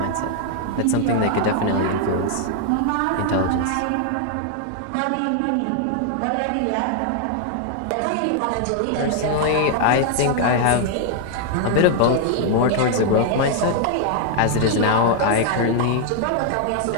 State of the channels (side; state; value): both; different; correlation 0.00